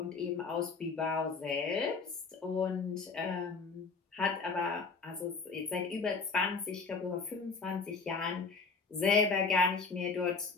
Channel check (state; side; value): quieter; right; 4.6 dB